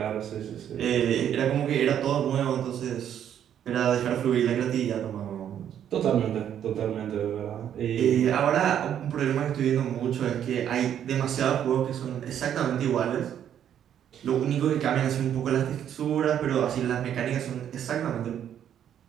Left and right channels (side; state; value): left; quieter; 9.7 dB